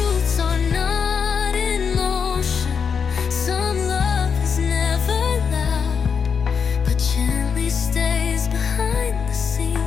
are not in motion, some love is never loud, but gently stays behind the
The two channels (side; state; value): right; quieter; 6.4 dB